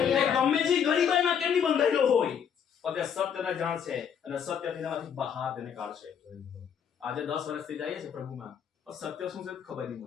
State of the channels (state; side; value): quieter; right; 7.9 dB